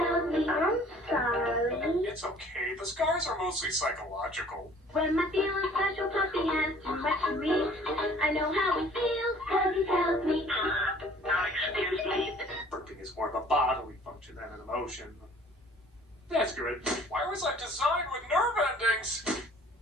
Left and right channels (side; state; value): both; normal; correlation 0.53